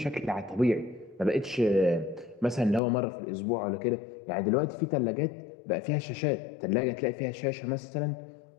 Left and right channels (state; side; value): drops out; right; at 2.8 s